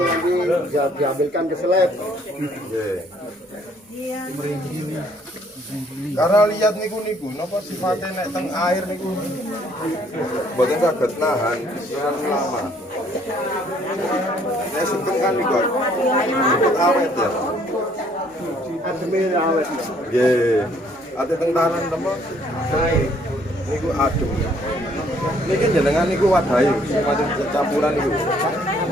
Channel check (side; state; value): both; normal; correlation 0.63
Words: nanti dia diambilkan ke seleb. Nggih. Karena lihat niku napa sifatnya nek teng air niku mboten saged nahan terlalu lama. Nek sugeng kan niku awet ya. Ademe awet. Nggih. Ate teng tanan temen. Niku adem. Niki jenengan niku wadahi, semacam campuran niku.